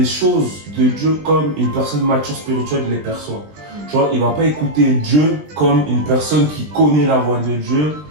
choses de Dieu comme une personne mature spirituelle les perçoit. Tu vois, il va pas écouter Dieu comme une personne qui connaît la voix de Dieu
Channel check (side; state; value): left; late; 20 ms